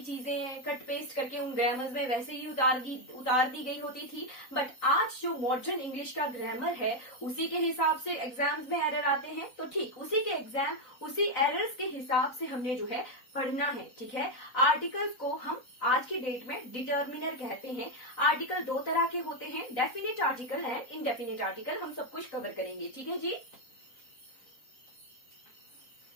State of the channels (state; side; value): late; right; 3.9 ms